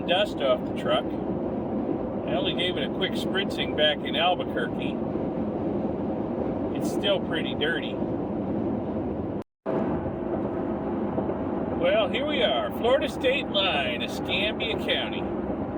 dust off the truck. I only gave it a quick spritzing back in Albuquerque. it's still pretty dirty. Well, here we are, Florida state line, Escambia County.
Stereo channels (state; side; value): identical; both; correlation 1.00